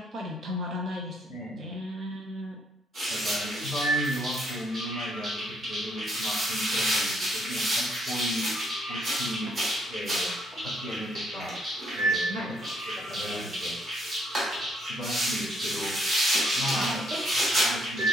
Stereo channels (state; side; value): normal; both; correlation 0.70